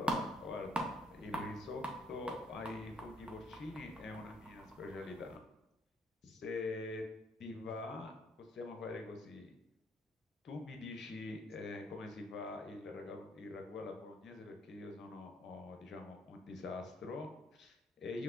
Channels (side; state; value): both; normal; correlation 0.67